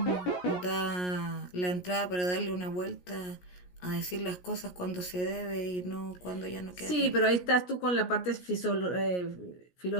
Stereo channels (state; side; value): late; right; 17 ms